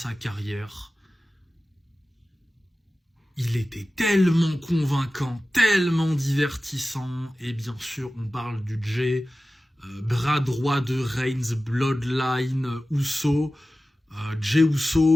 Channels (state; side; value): normal; both; correlation 0.95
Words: carrière, il était tellement convaincant, tellement divertissant, et bien sûr on parle du Jey, bras droit de Reigns, Bloodline, Uso, Jey